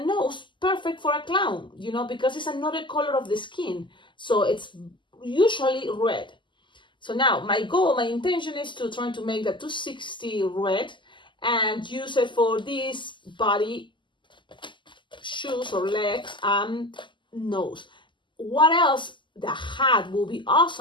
perfect for a clown, because it's another color of the skin. So it's usually red. So now my intention is to try to make the 260 red and use it for this body, shoes or legs and nose. What else? The hat will be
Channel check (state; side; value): late; right; 0.24 ms